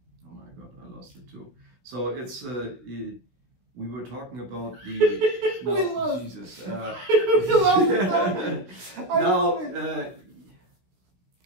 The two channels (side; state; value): left; late; 16 ms